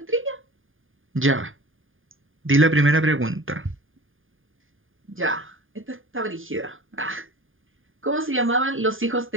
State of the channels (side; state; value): left; late; 0.59 ms